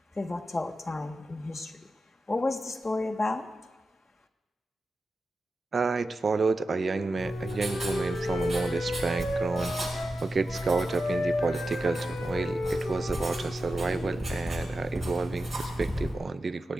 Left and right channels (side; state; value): both; normal; correlation 0.91